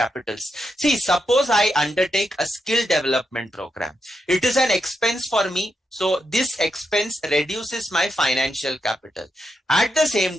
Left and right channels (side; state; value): both; normal; correlation 0.84